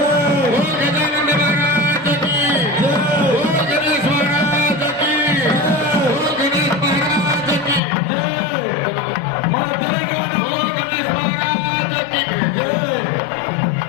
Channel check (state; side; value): drops out; right; at 7.8 s